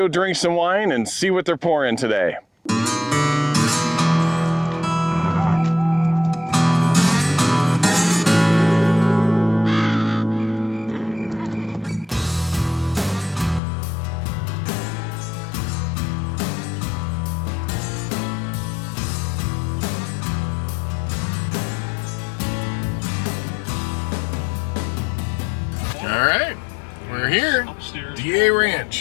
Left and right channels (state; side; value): drops out; right; at 13.6 s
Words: drink some wine and see what they're pouring today. Alright, we're here, DA